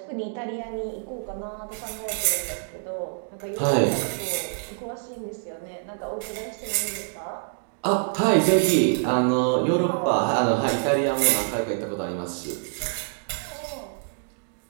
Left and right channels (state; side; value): silent; left; 61 dB below the other